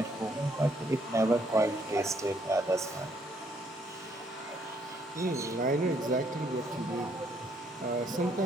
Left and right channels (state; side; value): normal; both; correlation 0.69